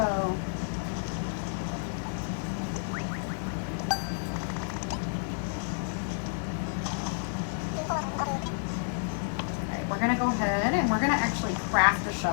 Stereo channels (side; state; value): right; silent; digital silence